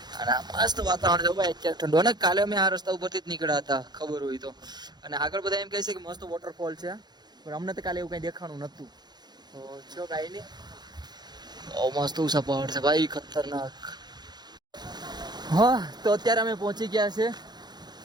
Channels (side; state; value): left; late; 0.20 ms